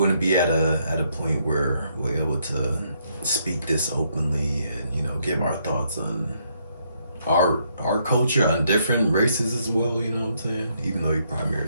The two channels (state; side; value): inverted; both; correlation -0.73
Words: be at a point where we're able to speak this openly and give our thoughts on our culture, on different races as well. You know what I'm saying? Even though you